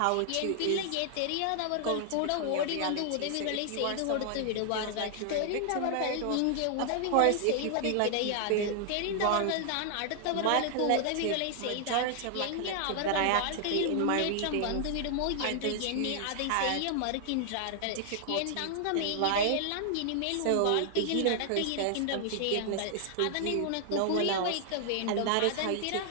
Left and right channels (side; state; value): both; different; correlation 0.00